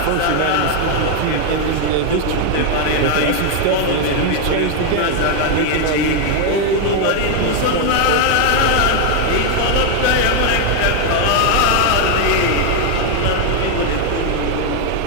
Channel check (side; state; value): both; different; correlation 0.01